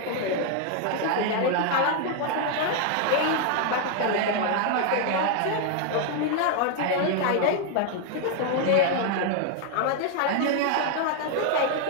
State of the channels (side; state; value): both; different; correlation 0.00